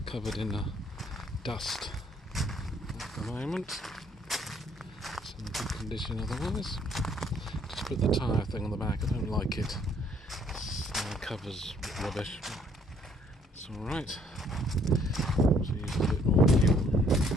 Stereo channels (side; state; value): both; normal; correlation 0.64